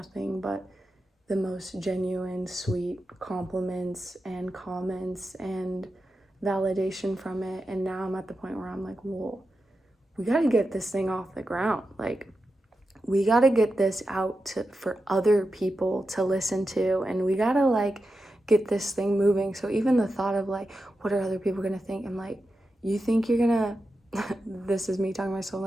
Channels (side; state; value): both; normal; correlation 0.90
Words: but the most genuine, sweet compliments and comments and validation from it. And now I'm at the point where I'm like, whoa, we got to get this thing off the ground. Like, we got to get this out for other people to listen to, and we got to like get this thing moving. So even the thought of like, what are other people going to think? I'm like, you think you're going to, this is me talking to myself,